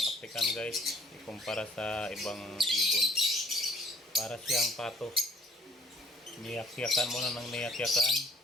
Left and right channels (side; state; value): both; normal; correlation 0.59